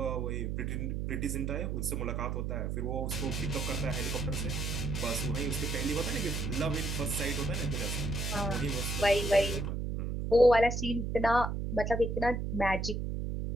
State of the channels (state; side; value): noise; right; hum, 2 dB below the sound